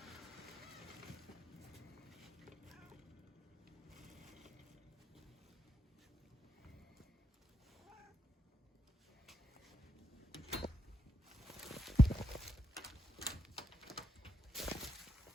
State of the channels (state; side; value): normal; both; correlation 0.82